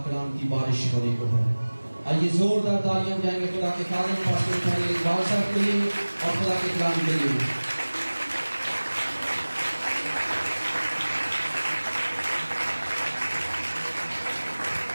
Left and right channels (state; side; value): inverted; both; correlation -1.00